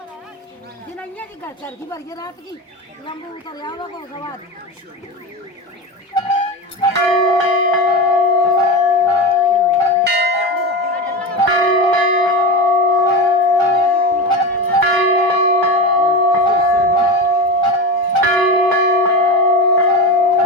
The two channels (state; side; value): normal; both; correlation 0.22